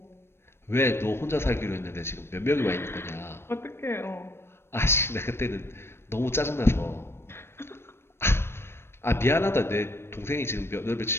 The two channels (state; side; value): late; right; 0.12 ms